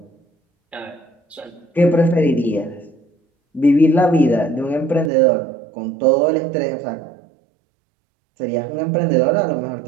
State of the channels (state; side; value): drops out; left; at 5.1 s